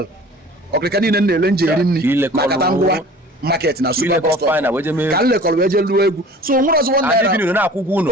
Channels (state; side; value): normal; both; correlation 0.45